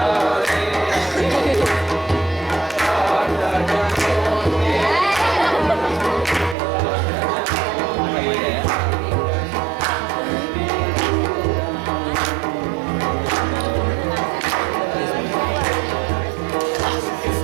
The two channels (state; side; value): drops out; left; at 6.6 s